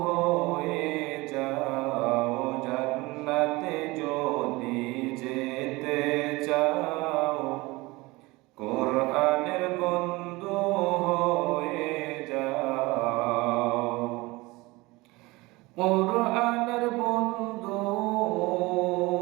হয়ে যাও জান্নাতে যদি যেতে চাও কোরআনের বন্ধু হয়ে যাও কোরআনের বন্ধু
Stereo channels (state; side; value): quieter; left; 22.3 dB